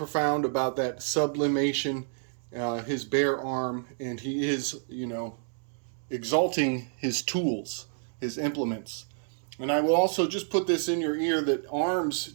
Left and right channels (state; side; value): silent; left; digital silence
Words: about that sublimation, his bare arm, and he is, exalting his tools, his implements. And I will also just put this in your ear that arms